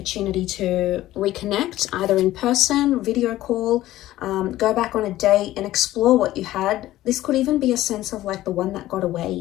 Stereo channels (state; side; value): quieter; right; 15.2 dB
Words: to reconnect, either in person, video call, go back on a date and explore what you had. This could even be a sense of like the one that got